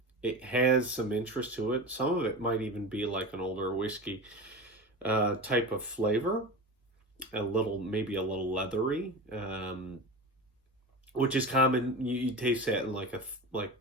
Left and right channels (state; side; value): normal; both; correlation 0.28